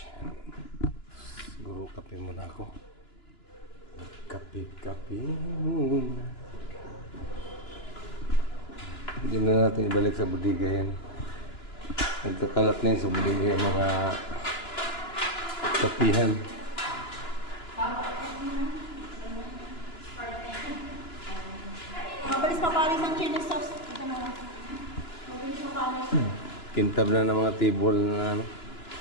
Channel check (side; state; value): right; late; 2.9 ms